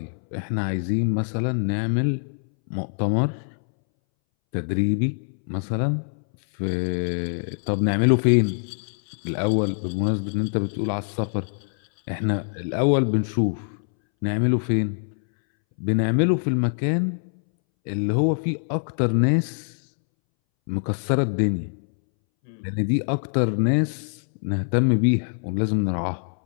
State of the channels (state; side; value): silent; right; 63 dB below the other